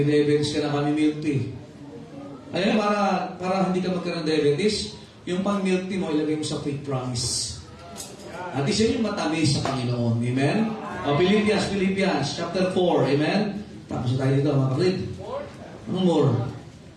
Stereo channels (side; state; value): both; identical; correlation 1.00